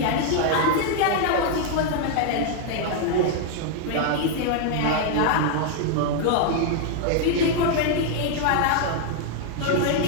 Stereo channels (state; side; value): different; both; correlation 0.00